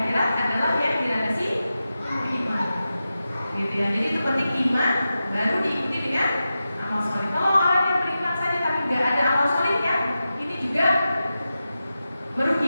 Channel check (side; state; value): both; inverted; correlation -0.92